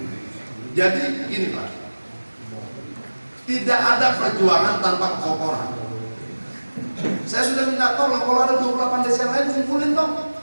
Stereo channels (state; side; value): inverted; both; correlation -1.00